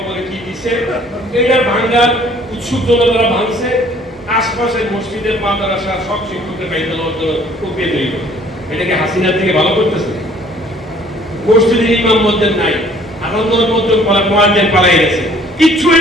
কি দিছে, এটার ভাঙ্গার উৎসুক জনতারা ভাঙছে। আশপাশের মসজিদের মাদ্রাসা সব শিক্ষকদের বাইরে প্রক্রিয়া তৈরি করে। এটাকে হাসিনার থেকে ভালো করতেছে। মসজিদের ইমাম মসজিদ নাই, আনন্দর মধ্যে মোয়াজ্জিন পালাই গেছে, কিচ্ছু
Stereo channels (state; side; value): normal; both; correlation 0.57